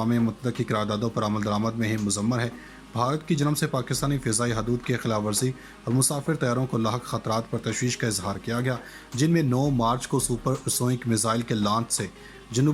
متحدہ کی قراردادوں پر عمل درآمد میں ہی مضمر ہے۔ بھارت کی جانب سے پاکستانی فضائی حدود کی خلاف ورزی اور مسافر طیاروں کو لاحق خطرات پر تشویش کا اظہار کیا گیا، جن میں 9 مارچ کو سپر سونک میزائل کے لانچ سے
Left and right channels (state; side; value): identical; both; correlation 1.00